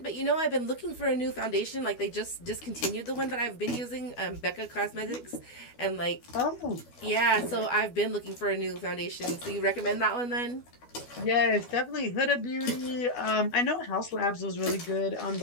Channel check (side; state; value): right; late; 12 ms